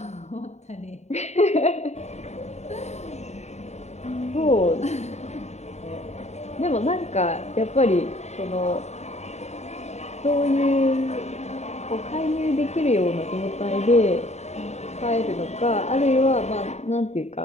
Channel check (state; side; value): late; right; 0.32 ms